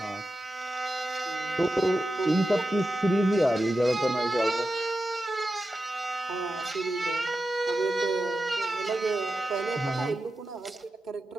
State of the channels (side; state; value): both; normal; correlation 0.91